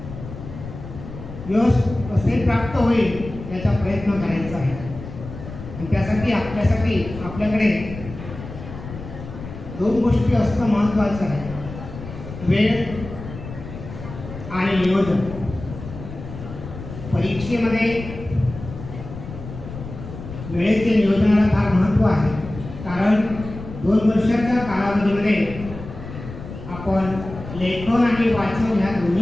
यश कसे प्राप्त होईल याचा प्रयत्न करायचा आहे. आणि त्यासाठी आपल्याकडे 2 गोष्टी असणं महत्त्वाचं आहे: वेळ आणि नियोजन. परीक्षेमध्ये वेळेचे नियोजनाला फार महत्त्व आहे. कारण 2 वर्षाच्या कालावधीमध्ये आपण लेखन आणि वाचन ह्या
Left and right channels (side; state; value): left; noise; rumble, 12 dB below the sound